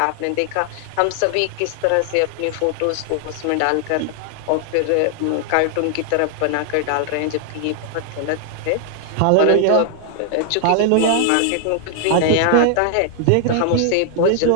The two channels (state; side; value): different; both; correlation 0.00